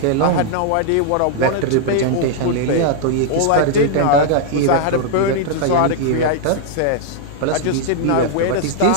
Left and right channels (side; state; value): both; different; correlation -0.01